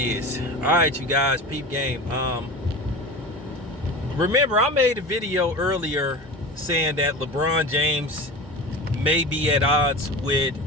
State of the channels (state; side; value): normal; both; correlation 0.31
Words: is. All right, you guys, peep game. Remember, I made a video earlier saying that LeBron James may be at odds